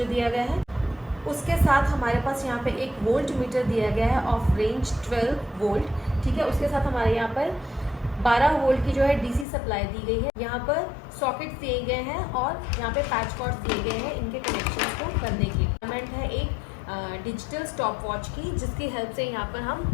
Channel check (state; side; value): drops out; right; at 9.5 s